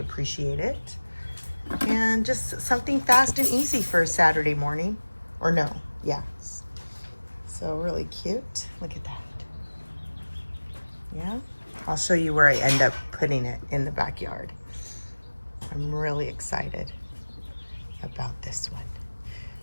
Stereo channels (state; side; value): inverted; both; correlation -1.00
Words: it. And just something fast and easy for a Saturday morning. Or no, yeah. So really cute. Look at that. Yeah. I'll show you where I end up putting it in the backyard. I'm really excited about this one.